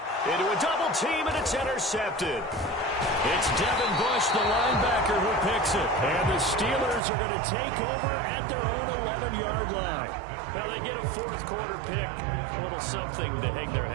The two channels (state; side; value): drops out; left; at 7.0 s